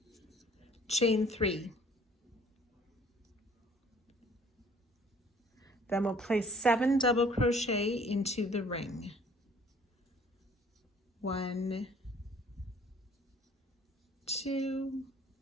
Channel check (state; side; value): normal; both; correlation 0.56